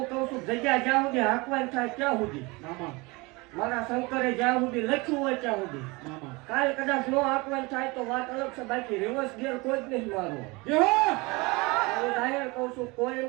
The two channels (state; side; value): quieter; left; 25.2 dB